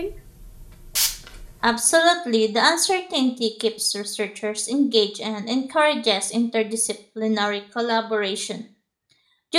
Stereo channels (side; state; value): both; identical; correlation 1.00